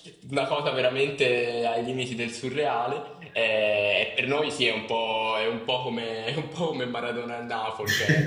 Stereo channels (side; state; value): both; identical; correlation 1.00